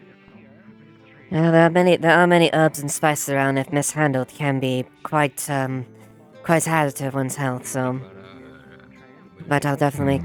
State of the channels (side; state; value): both; identical; correlation 1.00